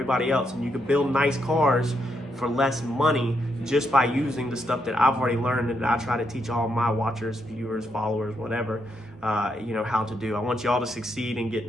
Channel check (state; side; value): normal; both; correlation 0.79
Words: else. And you can build nice cars for less money just by using the stuff that I've already learned and that I try to teach all my watchers, viewers, followers, whatever, you know, how to do. I want y'all to succeed and get